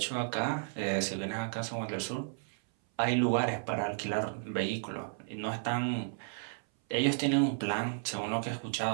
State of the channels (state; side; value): silent; left; 56 dB below the other